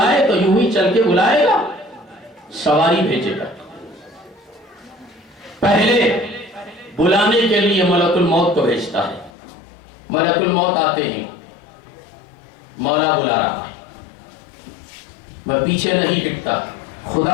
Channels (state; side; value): drops out; right; at 9.3 s